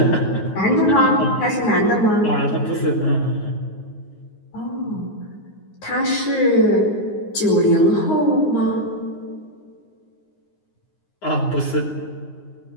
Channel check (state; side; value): late; right; 9.5 ms